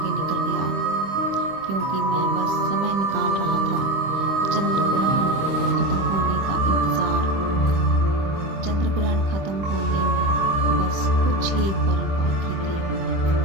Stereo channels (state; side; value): late; left; 25 ms